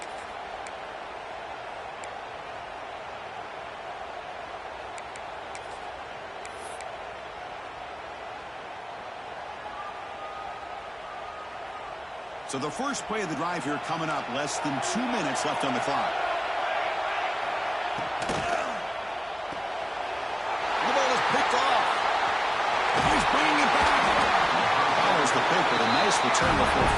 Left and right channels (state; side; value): identical; both; correlation 1.00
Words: So the first play of the drive here coming up, less than 2 minutes left on the clock. The ball is picked off. He's bringing it back. Follows the pick with a nice return before